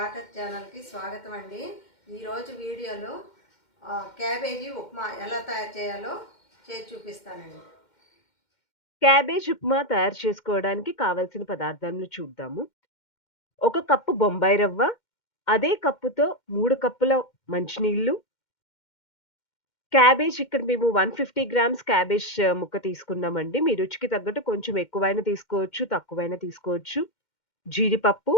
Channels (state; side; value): late; right; 2.1 ms